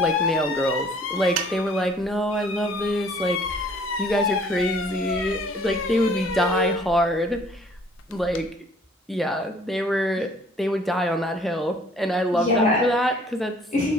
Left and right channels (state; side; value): normal; both; correlation 0.56